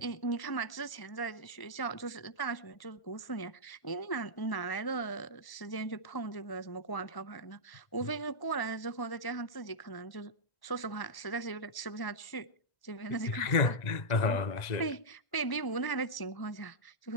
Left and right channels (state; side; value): late; right; 1.1 ms